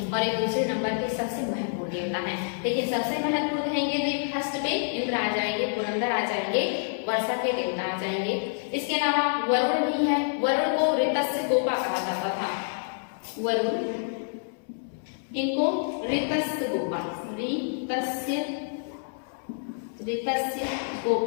और एक दूसरे नंबर के सबसे महत्वपूर्ण देवता है। देखिए सबसे महत्वपूर्ण कहेंगे तो एक फर्स्ट पे इंद्र आ जाएंगे, पुरंदर आ जाएंगे, वर्षा के देवता आ जाएंगे। इसके अलावा वरुण भी है। वरुण को ऋतस्य गोपा कहा जाता था। वरुण, इनको ऋतस्य गोपा, ऋतस्य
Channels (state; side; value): silent; right; 60 dB below the other